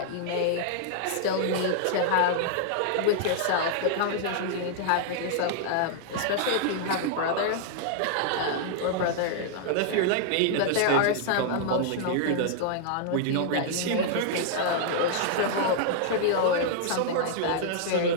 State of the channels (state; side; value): different; both; correlation -0.01